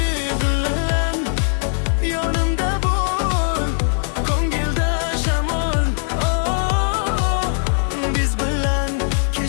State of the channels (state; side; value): silent; right; 62 dB below the other